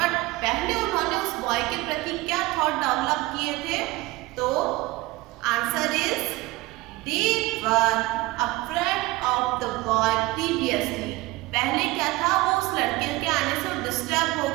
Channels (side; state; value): left; quieter; 20.4 dB